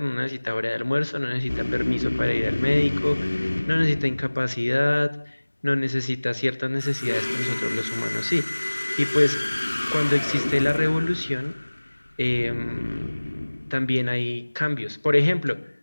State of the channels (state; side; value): inverted; both; correlation -1.00